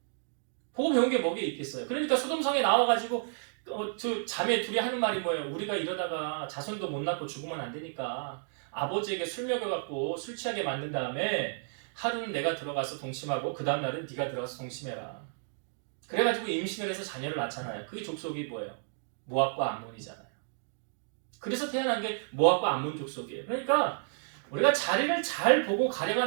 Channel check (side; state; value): left; silent; digital silence